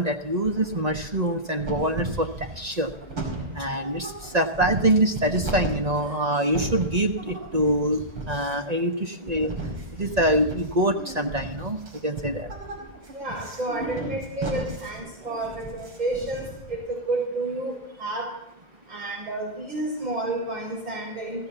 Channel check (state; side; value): late; left; 1.9 ms